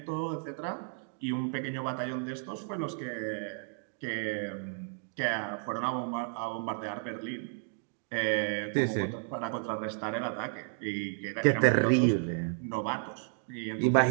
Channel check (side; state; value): left; silent; 56 dB below the other